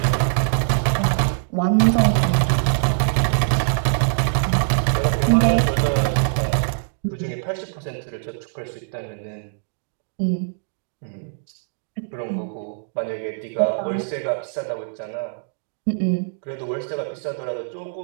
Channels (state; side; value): silent; left; digital silence